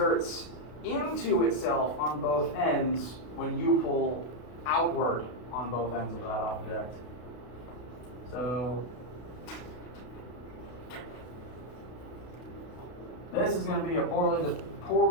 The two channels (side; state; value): right; late; 32 ms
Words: into itself on both ends when you pull outward on both ends of that object. So this is going to be a